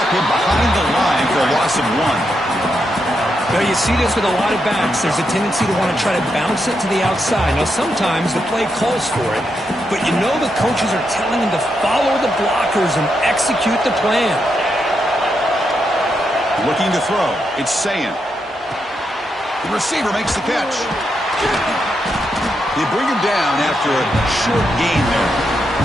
him behind the line for a loss of 1. Now, you see this with a lot of backs. There's a tendency to want to try to bounce it to the outside. Now, sometimes the play calls for it, but you know the coaches are telling him to follow the blockers and execute the plan. Looking to throw. It's Sayin. The receiver makes the catch. They bring him down after a short gain there.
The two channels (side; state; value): both; normal; correlation 0.83